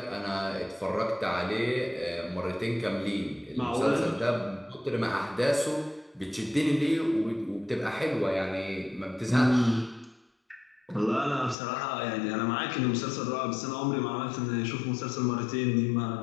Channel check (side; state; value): right; drops out; at 11.6 s